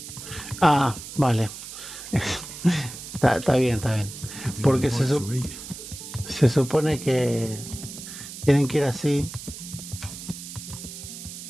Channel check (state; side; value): noise; right; hiss, 11 dB below the sound